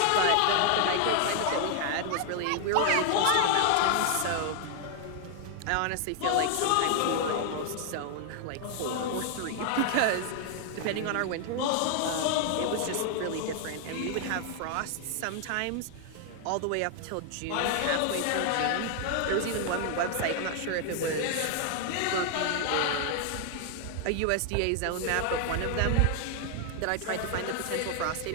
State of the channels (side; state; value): both; different; correlation 0.00